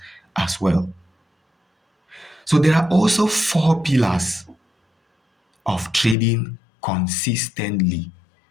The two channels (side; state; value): right; drops out; at 6.2 s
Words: as well. So there are also four pillars of trading consistently.